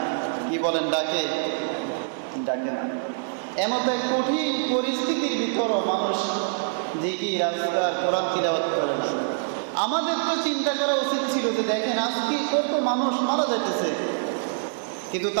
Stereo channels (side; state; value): left; silent; digital silence